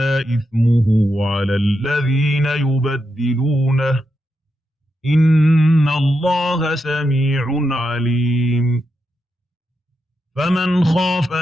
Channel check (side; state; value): both; normal; correlation 0.85